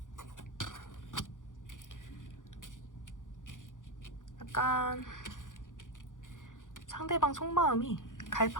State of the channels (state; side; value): late; right; 0.88 ms